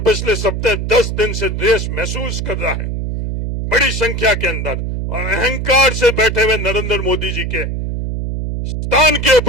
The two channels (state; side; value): noise; right; hum, 3 dB below the sound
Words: पिछले सप्ताह 10 दिन से देश महसूस कर रहा है बड़ी संख्या के अंदर, और अहंकार से बैठे हुए नरेंद्र मोदी जी के स्थान के